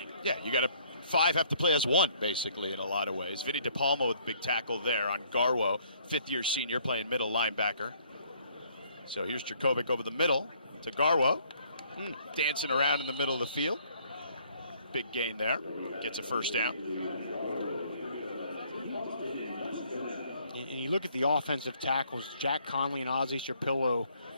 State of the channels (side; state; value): both; inverted; correlation -0.62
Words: Yeah, 5 have to play as one, basically, in a lot of ways. Vinnie De Palma with big tackle there on Garwo, 5th-year senior playing middle linebacker. So here's Jerkovic over the middle to Garwo. Dancing around in the middle of the field. Big gain there. Gets a first down. And you look at the offensive tackles, Jack Conley and Ozzie Shapillo,